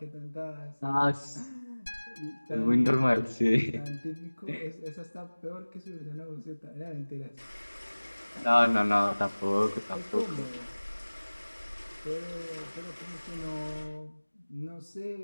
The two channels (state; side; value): inverted; both; correlation -1.00